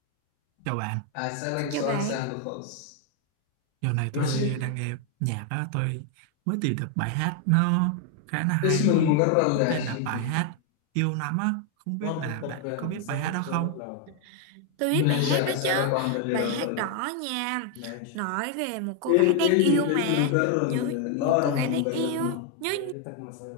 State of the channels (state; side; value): different; both; correlation 0.01